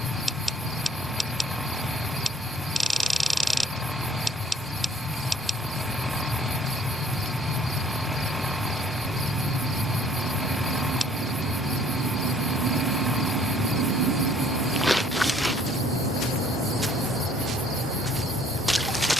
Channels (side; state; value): both; normal; correlation 0.58